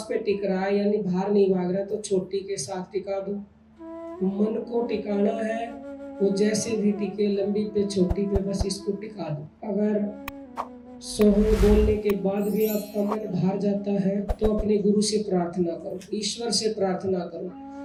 पे टिक रहा है यानी बाहर नहीं भाग रहा तो छोटी के साथ टिका दो। मन को टिकाना है वो जैसे भी टिके, लंबी पे छोटी पे बस इसको टिका दो। अगर सोहम बोलने के बाद भी आपका मन बाहर जाता है तो अपने गुरु से प्रार्थना करो, ईश्वर से प्रार्थना करो।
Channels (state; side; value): identical; both; correlation 1.00